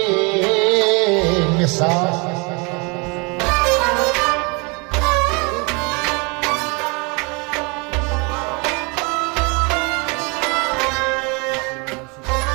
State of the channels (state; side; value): quieter; left; 30.1 dB